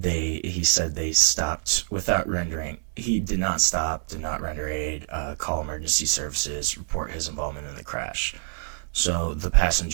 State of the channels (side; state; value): left; silent; 61 dB below the other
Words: He said they stopped without rendering. He did not stop, did not render aid, call emergency services, report his involvement in the crash. So the